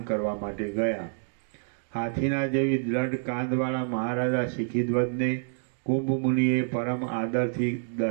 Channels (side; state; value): left; silent; digital silence